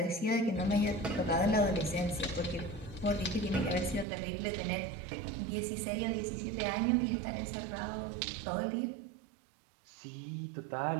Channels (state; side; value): drops out; left; at 4.0 s